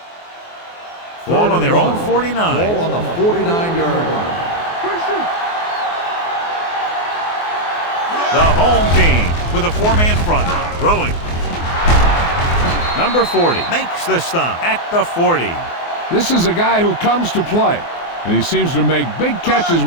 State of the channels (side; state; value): right; late; 24 ms